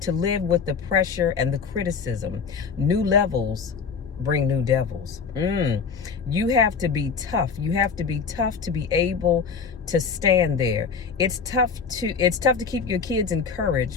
live with the pressure and the criticism. New levels bring new devils. You have to be tough. You have to be tough to be able to stand there. It's tough to keep your kids encouraged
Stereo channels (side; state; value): right; quieter; 5.7 dB